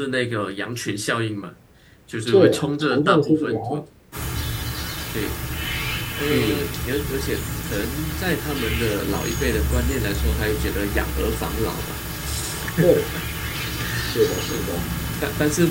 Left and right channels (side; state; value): both; identical; correlation 1.00